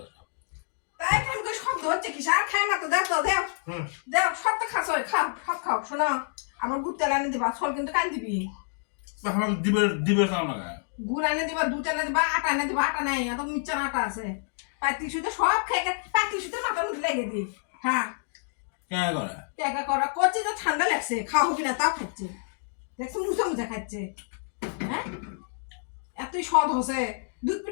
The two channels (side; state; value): right; silent; digital silence